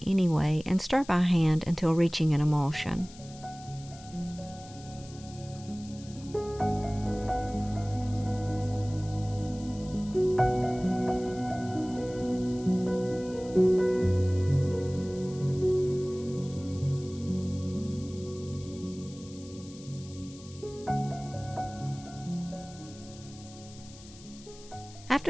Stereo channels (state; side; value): noise; left; hiss, 20 dB below the sound